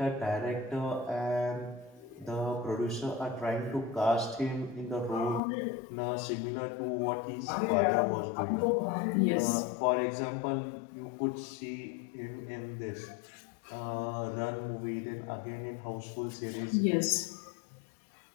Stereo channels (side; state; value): right; drops out; at 5.4 s